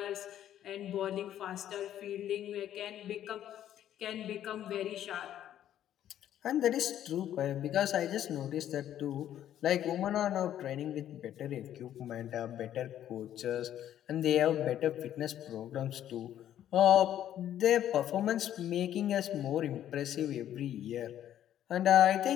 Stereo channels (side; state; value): right; quieter; 11.3 dB